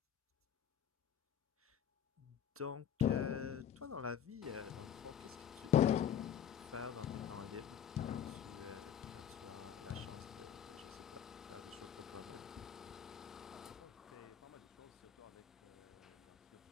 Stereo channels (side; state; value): right; quieter; 9.1 dB